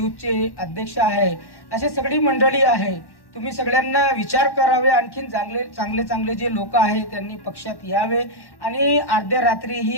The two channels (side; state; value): right; late; 1.1 ms